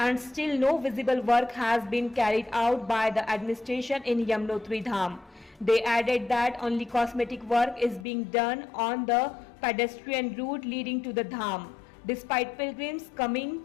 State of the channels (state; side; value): drops out; right; at 8.1 s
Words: still no visible work has been carried out by the administration in Yamunotri Dham. They added that only cosmetic work is being done on the pedestrian route leading to the Dham. Despite pilgrims coming